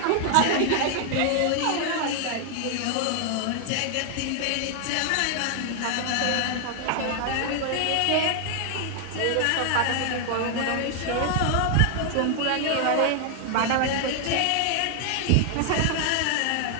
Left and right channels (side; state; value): both; different; correlation 0.00